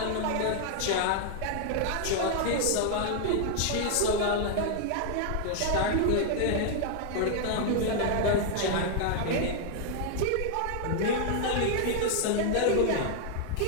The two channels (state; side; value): different; both; correlation 0.00